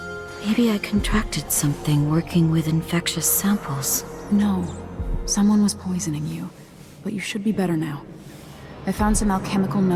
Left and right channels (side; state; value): both; identical; correlation 1.00